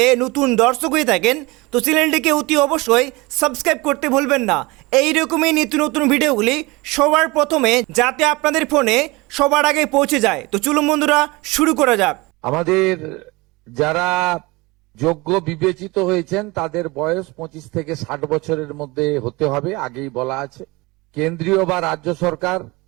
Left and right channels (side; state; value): left; quieter; 23.6 dB